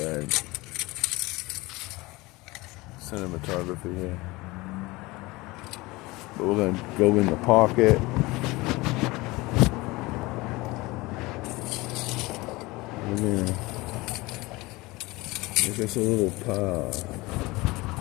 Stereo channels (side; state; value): right; quieter; 21.9 dB